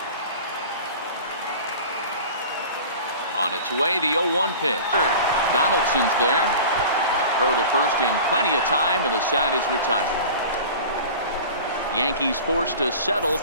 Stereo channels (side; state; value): both; inverted; correlation -0.38